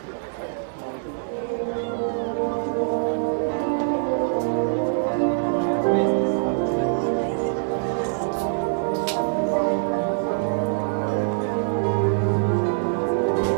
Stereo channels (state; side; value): silent; left; digital silence